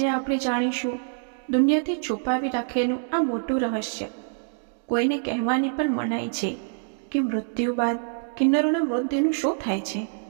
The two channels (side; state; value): left; silent; digital silence